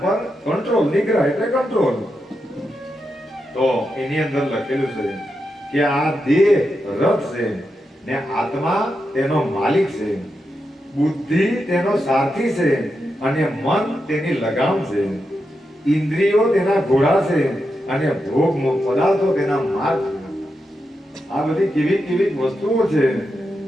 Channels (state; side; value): normal; both; correlation 0.86